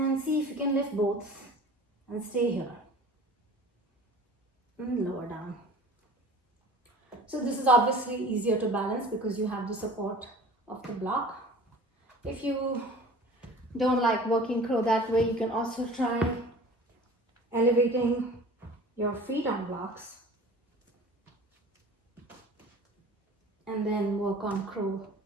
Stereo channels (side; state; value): both; normal; correlation 0.43